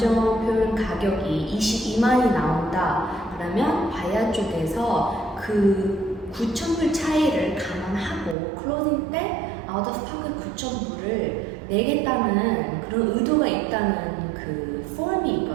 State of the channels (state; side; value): drops out; left; at 8.3 s